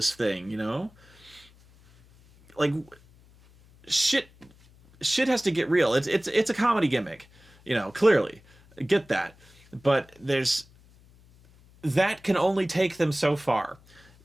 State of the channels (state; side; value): noise; left; hum, 27 dB below the sound